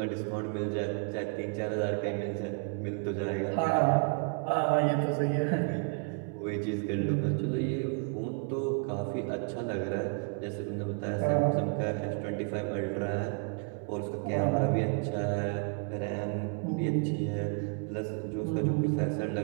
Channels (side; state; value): left; quieter; 38.1 dB